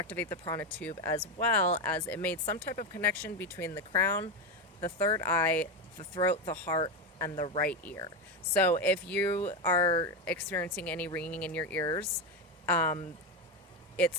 the prana tube, as well as it made some type of connection between the crown, the third eye, the throat, the heart, and the right ear. So if you are experiencing any ringing in your ears,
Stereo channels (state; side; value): normal; both; correlation 0.13